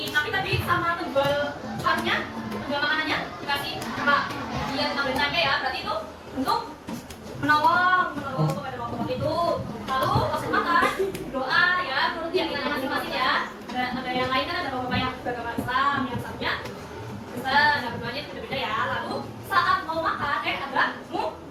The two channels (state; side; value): identical; both; correlation 1.00